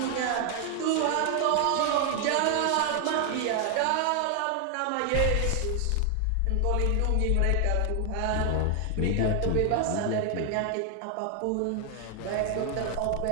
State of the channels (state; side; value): different; both; correlation 0.00